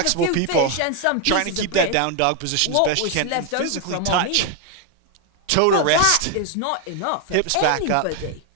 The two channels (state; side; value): different; both; correlation 0.01